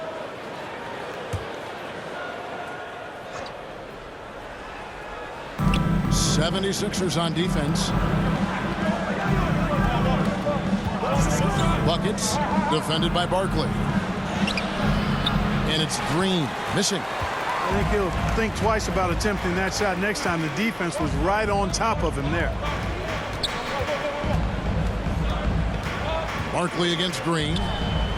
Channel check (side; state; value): both; identical; correlation 1.00